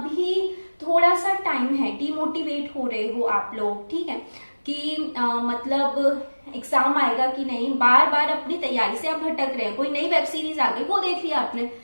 थोड़ा सा टाइम है, डिमोटिवेट हो रहे हो आप लोग। ठीक है, कि मतलब एग्जाम आएगा कि नहीं, बार बार अपनी तैयारी से आप भटक रहे हैं, कोई नई वेब सीरीज आ गई वो देख लिया आपने।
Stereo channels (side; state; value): both; inverted; correlation -1.00